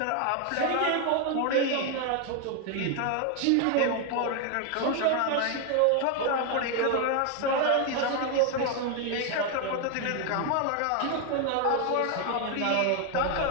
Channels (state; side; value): different; both; correlation 0.01